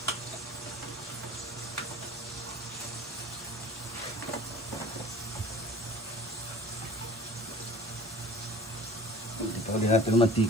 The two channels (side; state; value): both; normal; correlation 0.44